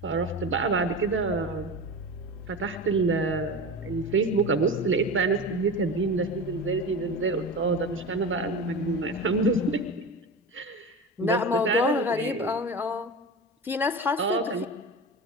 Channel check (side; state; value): both; normal; correlation 0.28